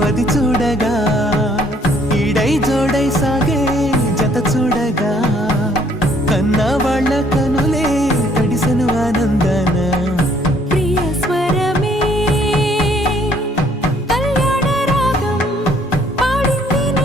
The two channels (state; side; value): normal; both; correlation 0.63